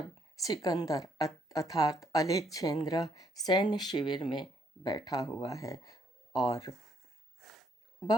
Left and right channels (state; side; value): normal; both; correlation 0.70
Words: सिकंदर अर्थात अलेक्जेंद्र सैन्य शिविर में बैठा हुआ है और